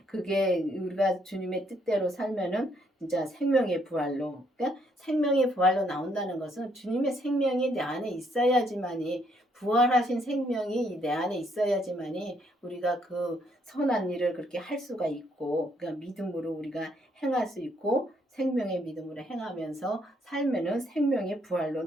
그게 우리가 주님의 뜻대로 살면은 진짜 생명의 부활로 그러니까 생명의 부활로 나온다는 것은 주님의 생명이 내 안에 있어야지만이 부활하신 생명이 내 안에 있어야지만이 우리가 그 선한 일을 그렇게 할 수가 있고, 그러니까 믿음으로 우리가 행할 수 있고, 생명의 믿음으로 행하면서 살면은 생명의 부활로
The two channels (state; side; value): normal; both; correlation 0.70